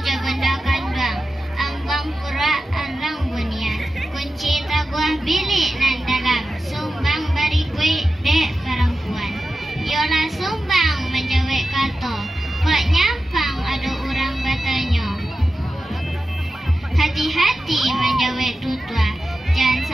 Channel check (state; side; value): normal; both; correlation 0.92